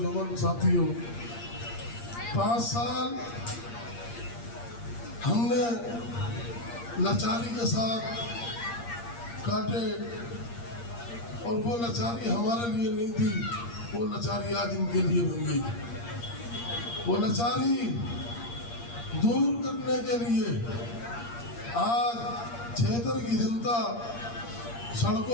साथियों, 5 साल हमने लाचारी के साथ काटे और वो लाचारी हमारे लिए नहीं थी, वो लाचारी आज इनके लिए बन गई। वो लाचारी दूर करने के लिए आज क्षेत्र की जनता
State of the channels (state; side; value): late; right; 8.6 ms